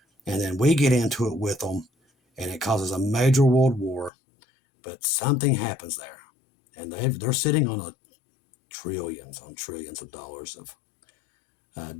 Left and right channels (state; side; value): drops out; right; at 4.1 s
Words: and then we get into it with them and it causes a major world war. But something happens there. And they're sitting on trillions of dollars of